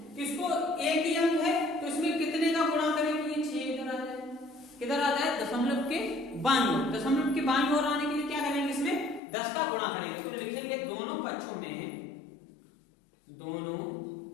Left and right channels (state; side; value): drops out; right; at 9.2 s